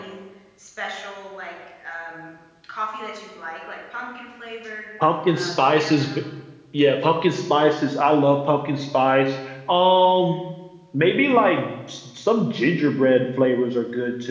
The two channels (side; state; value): both; identical; correlation 1.00